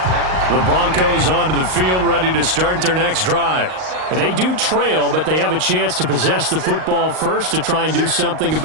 The Broncos onto the field, ready to start their next drive. They do trail, but they have a chance to possess the football first to try and do something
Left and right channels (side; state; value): left; late; 38 ms